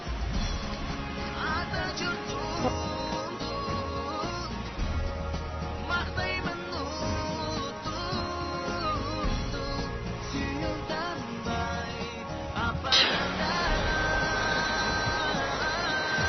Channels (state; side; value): identical; both; correlation 1.00